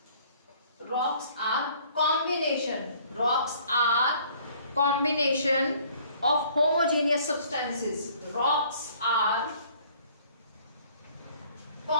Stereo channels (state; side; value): inverted; both; correlation -0.57